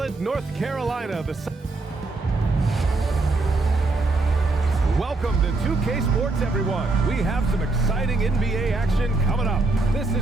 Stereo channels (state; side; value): quieter; left; 3.3 dB